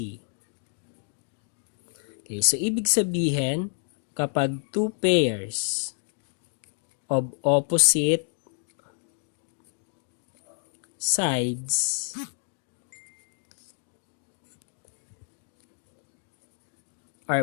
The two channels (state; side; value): silent; right; digital silence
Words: Okay, so ibig sabihin, kapag two pairs of opposite sides